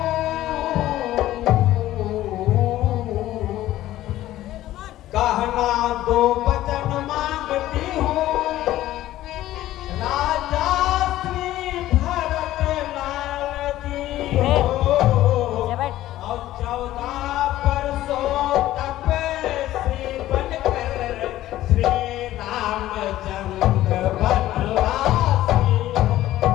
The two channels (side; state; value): right; quieter; 14.5 dB